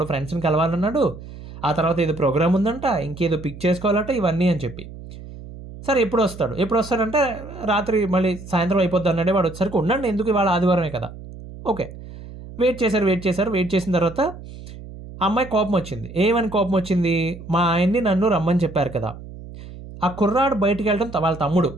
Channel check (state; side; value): noise; right; hum, 14 dB below the sound